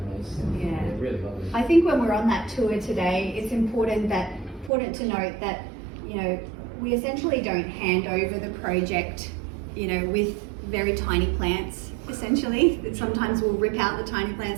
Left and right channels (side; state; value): left; drops out; at 4.7 s